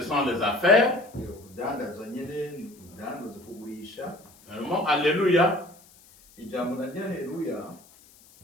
sont les affaires. Urudandazwa nyene ni urudandaza kugurisha. Le mot Alléluia, Ijambo na Haleluya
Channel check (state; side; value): noise; left; hiss, 26 dB below the sound